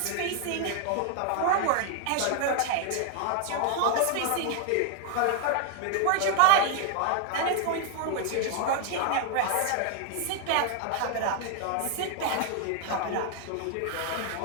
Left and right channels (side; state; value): both; different; correlation 0.00